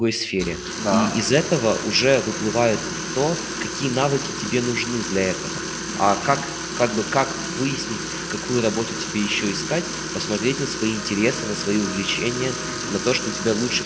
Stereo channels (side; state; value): both; identical; correlation 1.00